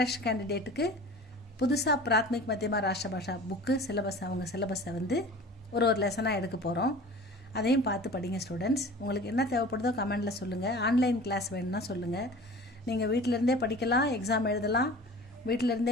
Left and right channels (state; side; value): normal; both; correlation 0.41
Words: கேண்டிடேட்டுக்கு புதுசாக பிராத்மிக் மத்தியமா ராஷ்டிர பாஷா புக்கு சிலபஸ், அவங்க சிலபஸை ஒரு லெசனாக எடுக்க போகிறோம். அதையும் பார்த்து படிங்க ஸ்டூடெண்ட்ஸ். உங்களுக்கு என்ன தேவைப்படுதோ கமெண்டில் சொல்லுங்கள். ஆன்லைன் கிளாஸ் வேணும்னா சொல்லுங்கள். நீங்கள் வீட்டிலேருந்தே படிக்கலாம், எக்ஸாம் எழுதலாம்.